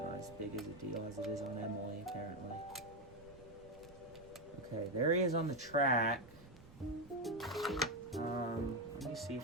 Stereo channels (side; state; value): right; noise; rumble, 21 dB below the sound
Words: as big as a deal as it is on Emily, apparently. Okay, there he is on the track. Let me see